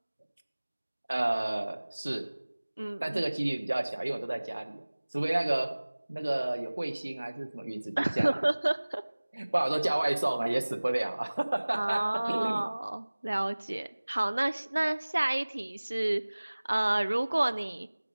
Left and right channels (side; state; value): both; inverted; correlation -1.00